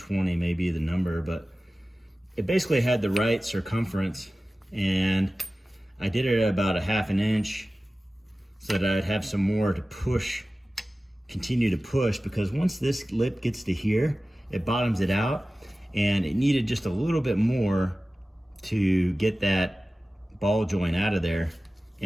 may be the number, but it basically had the right circumference, and I did it at about 1/2 inch so that I'd have some more to push, continue to push, because once this lip gets to here, it bottoms it out, and it needed just a little bit more to get that ball joint out of there.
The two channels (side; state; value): both; normal; correlation 0.96